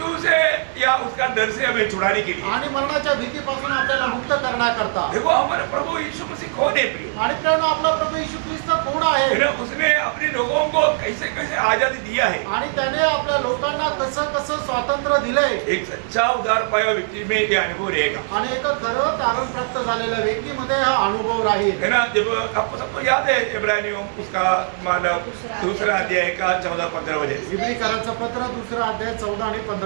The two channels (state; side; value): silent; left; 57 dB below the other